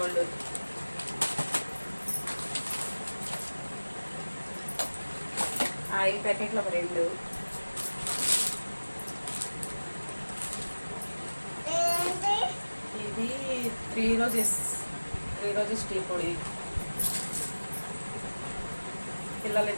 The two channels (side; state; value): both; inverted; correlation -1.00